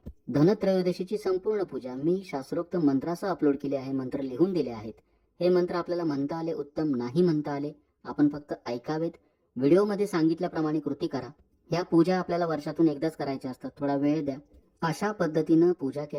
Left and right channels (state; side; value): identical; both; correlation 1.00